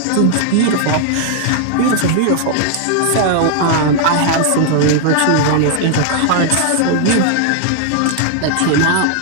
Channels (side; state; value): both; different; correlation 0.00